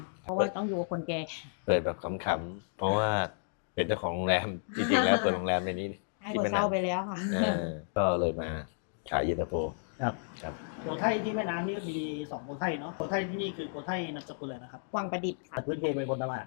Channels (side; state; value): right; silent; digital silence